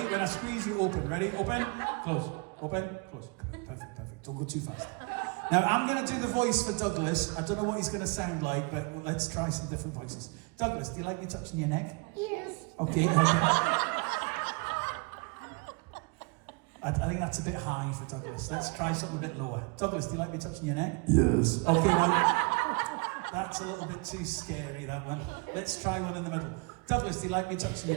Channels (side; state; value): left; quieter; 31.5 dB